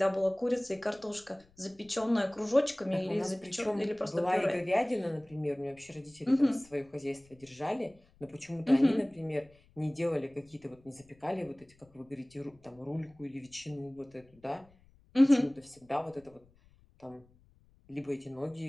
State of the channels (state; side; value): noise; left; rumble, 29 dB below the sound